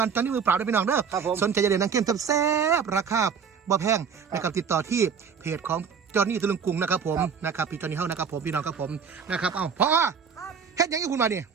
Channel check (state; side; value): quieter; left; 6.6 dB